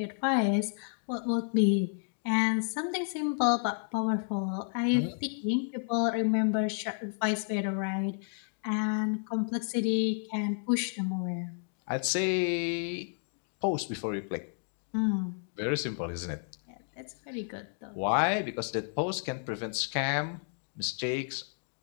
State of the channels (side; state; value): right; silent; 57 dB below the other